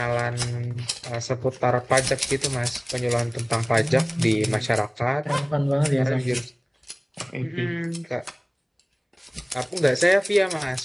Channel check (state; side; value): identical; both; correlation 1.00